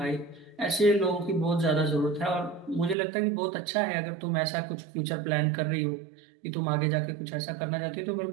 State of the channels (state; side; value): drops out; left; at 3.0 s